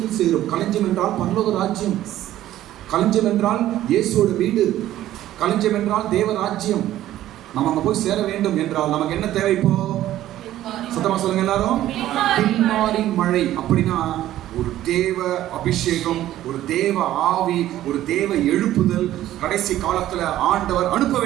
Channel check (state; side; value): quieter; left; 13.5 dB